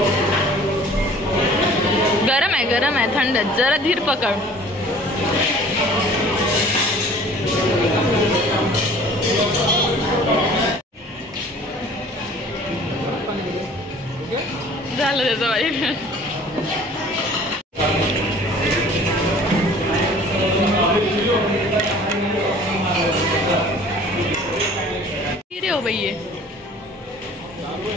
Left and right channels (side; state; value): both; normal; correlation 0.49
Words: गरम आहे थंड. जरा धीर पकड. झालं त्याचं वाईट. रे हो भैया.